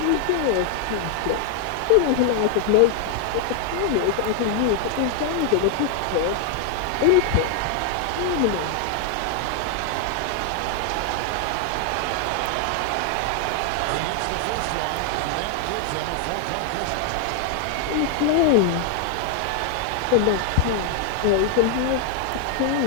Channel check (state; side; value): different; both; correlation 0.00